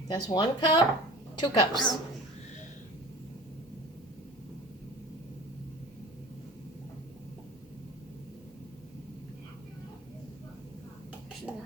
That's 1 cup, 2 cups. Oh.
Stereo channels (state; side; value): normal; both; correlation 0.39